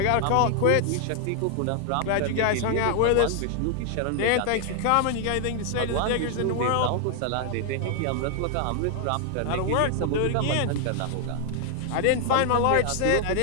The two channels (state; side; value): different; both; correlation 0.00